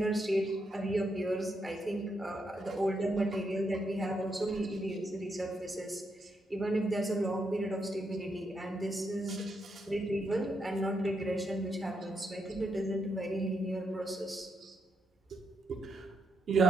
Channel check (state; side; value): normal; both; correlation 0.80